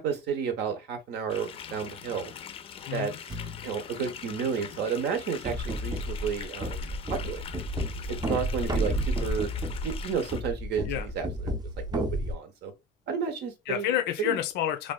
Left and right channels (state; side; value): normal; both; correlation 0.33